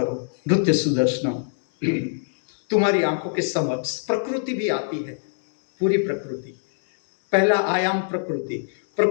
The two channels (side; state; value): right; silent; digital silence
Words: नृत्य सुदर्शनम। तुम्हारी आंखों के समक्ष प्रकृति भी आती है, पूरी प्रकृति। पहला आयाम प्रकृति,